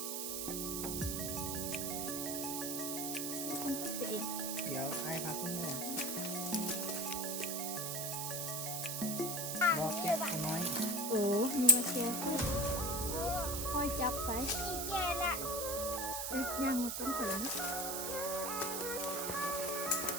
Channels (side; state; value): right; noise; hiss, 2 dB below the sound